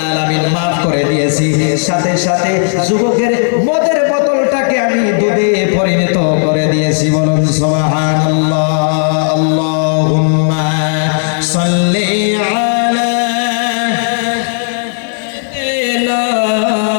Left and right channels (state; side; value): silent; right; digital silence